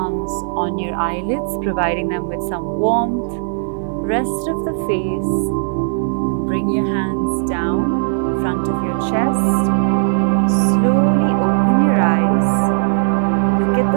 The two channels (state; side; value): silent; left; 68 dB below the other